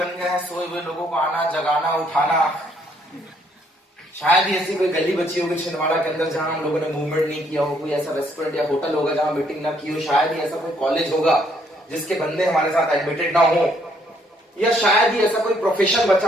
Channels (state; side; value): normal; both; correlation 0.68